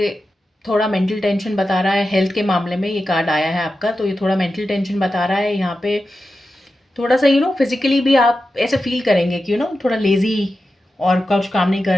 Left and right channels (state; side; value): normal; both; correlation 0.91